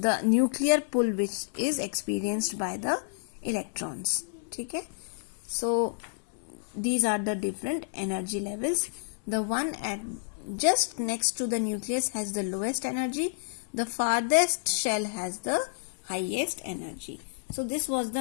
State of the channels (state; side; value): silent; right; 58 dB below the other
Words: nuclear pull which is experienced by the electrons. Okay, so these are the different energy levels. The one at just next to the nucleus has the lowest energy. The farthest shell has the highest energy. So this was